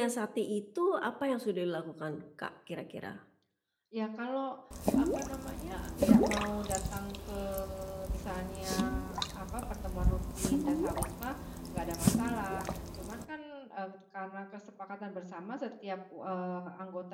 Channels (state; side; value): identical; both; correlation 1.00